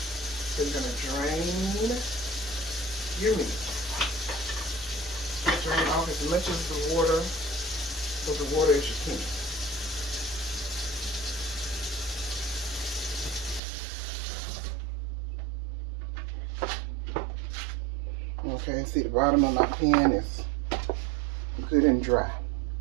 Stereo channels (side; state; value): left; drops out; at 13.6 s